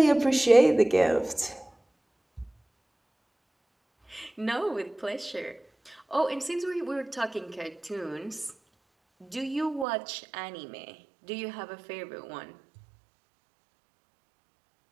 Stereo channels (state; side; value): drops out; left; at 9.9 s